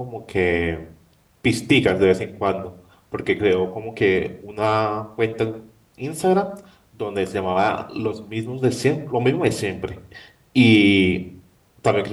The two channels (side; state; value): both; identical; correlation 1.00